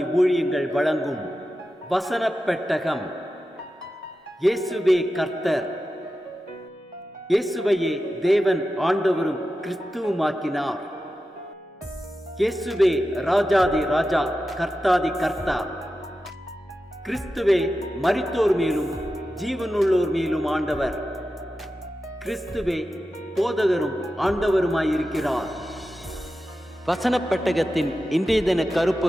ஊழியங்கள் வழங்கும் வசனப் பெட்டகம். இயேசுவே கர்த்தர். இயேசுவையே தேவன் ஆண்டவரும் கிறிஸ்துவுமாக்கினார். இயேசுவே ராஜாதி ராஜா, கர்த்தாதி கர்த்தா. கிறிஸ்துவே மரித்தோர் மேலும் ஜீவனுள்ளோர் மேலும் ஆண்டவர். கிறிஸ்துவே போதகரும் ஆண்டவருமாயிருக்கிறார். வசனப் பெட்டகத்தின் இன்றைய தின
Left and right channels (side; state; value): both; normal; correlation 0.92